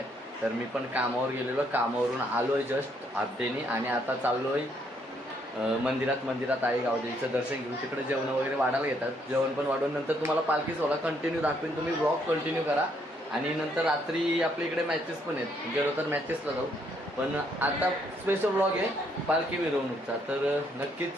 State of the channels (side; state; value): both; normal; correlation 0.70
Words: तर मी पण कामावर गेलेलो, कामावरून आलो आहे जस्ट हाफडेनी आणि आता चाललो आहे मंदिरात आई गावदेवीचं दर्शन घेऊन। तिकडे जेवण वगैरे वाढायला घेतात, जेवण पण वाढून नंतर तुम्हाला पालखी सोहळा कंटिन्यू दाखवेन। तुम्ही ब्लॉग कंटिन्यू करा आणि नंतर रात्री आपल्या इकडे मॅचेस पण आहेत, गेलो तर मॅचेसला जाऊ। पण आता स्पेशल ब्लॉग आहे पालखी मिरवणूकचा। तर नक्कीच